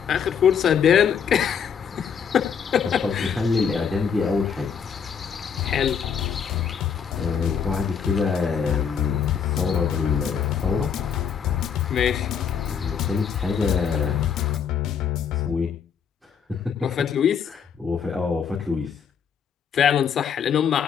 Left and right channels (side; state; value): right; quieter; 7.2 dB